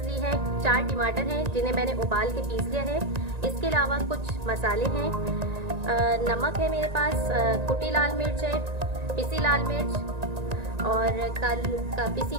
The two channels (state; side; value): late; left; 1.9 ms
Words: ली है। 4 टमाटर हैं जिन्हें मैंने उबाल के पीस लिया है। इसके अलावा कुछ मसाले हैं, नमक है मेरे पास, कुटी लाल मिर्च है, पिसी लाल मिर्च और पिसी